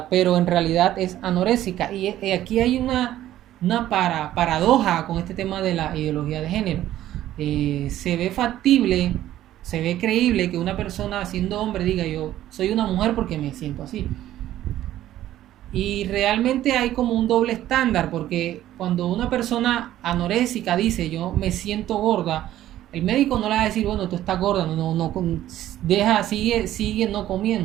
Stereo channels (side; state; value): left; quieter; 13.2 dB